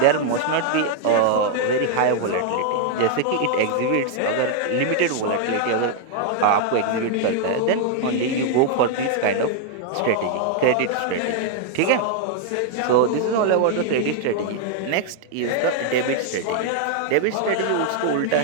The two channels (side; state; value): both; different; correlation 0.00